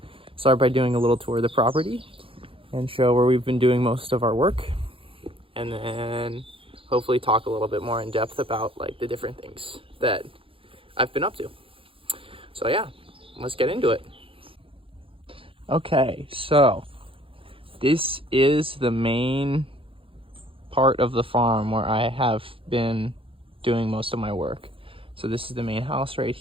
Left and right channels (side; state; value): left; late; 0.26 ms